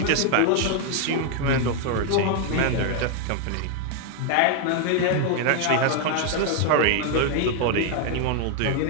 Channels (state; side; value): different; both; correlation 0.00